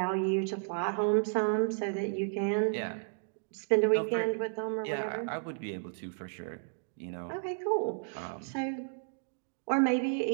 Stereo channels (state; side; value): silent; left; digital silence